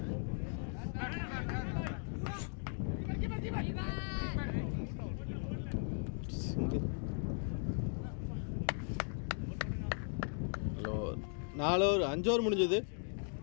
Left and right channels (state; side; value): silent; right; 52 dB below the other